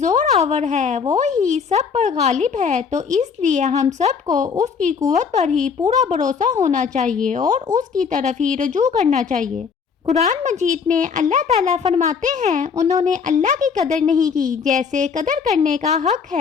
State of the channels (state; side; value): quieter; right; 6.1 dB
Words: आवर है, वो ही सब पर गालिब है, तो इसलिए हम सबको उसकी कुव्वत पर ही पूरा भरोसा होना चाहिए और उसकी तरफ ही रुजू करना चाहिए। कुरान मजीद में अल्लाह ताला फरमाते हैं, उन्होंने अल्लाह की कदर नहीं की जैसे कदर करने का हक